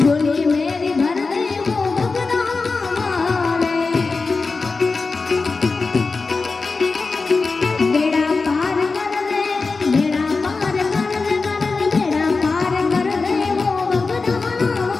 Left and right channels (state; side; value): quieter; right; 4.1 dB